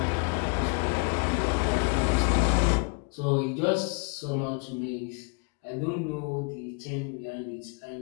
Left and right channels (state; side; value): quieter; right; 35.2 dB